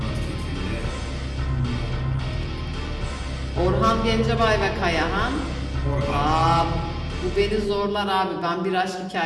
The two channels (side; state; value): both; identical; correlation 1.00